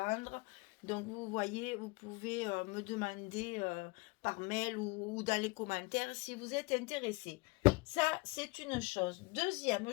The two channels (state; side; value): quieter; right; 25.6 dB